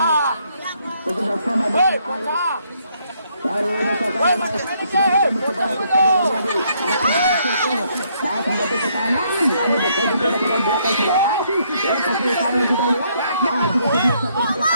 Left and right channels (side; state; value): both; inverted; correlation -0.70